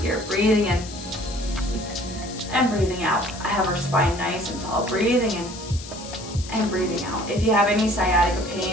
here, breathing in and breathing out. I have our spine nice and tall, breathing in and breathing out. If you have any sciatica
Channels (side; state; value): left; noise; hiss, 14 dB below the sound